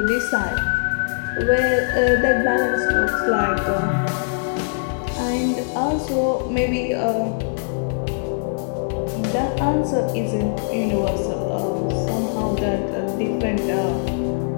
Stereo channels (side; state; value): right; silent; digital silence